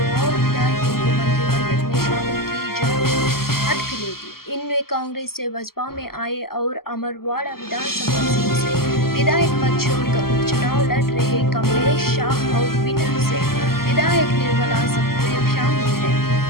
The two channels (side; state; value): right; late; 0.93 ms